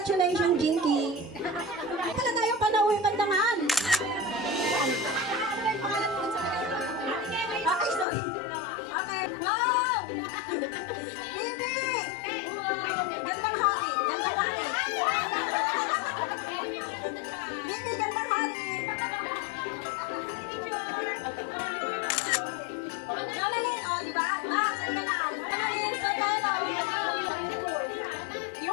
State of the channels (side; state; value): right; drops out; at 8.1 s